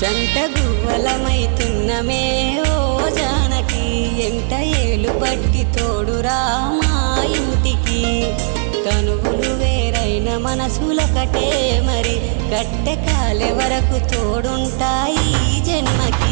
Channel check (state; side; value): silent; left; 68 dB below the other